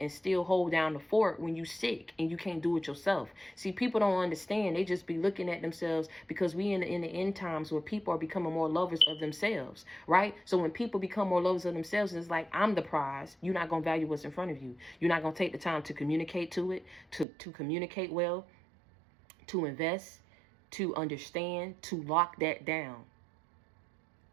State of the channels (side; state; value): left; drops out; at 17.2 s